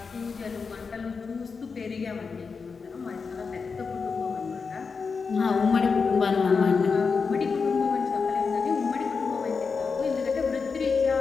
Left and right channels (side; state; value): right; quieter; 5.1 dB